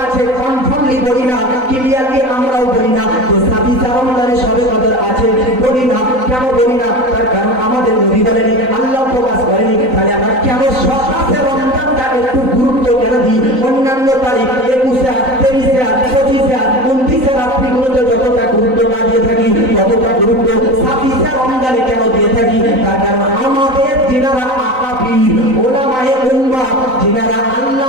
আছে কনফার্মলি বলি না, ক্লিয়ারলি আমরাও বলি না যে রমজানে সবে কদর আছে, বলি না। কেন বলি না? তার কারণ আমাদের নবী বলেনি, আল্লাহ প্রকাশ করেনি। তাহলে আমরা কেন 27 রমজানটা একটু গুরুত্ব কেন দিই? অন্যান্য তারিখ 21, 23, 25, 29 রাত্রিগুলোতে যতটা গুরুত্ব না দিয়ে থাকি, ততটা গুরুত্ব 27 রমজানে কেন দিয়ে থাকি? তার কারণ আমাদের যিনারা আকাবির ওলামায়ে উম্মাহ, যিনারা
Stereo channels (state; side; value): late; left; 3.9 ms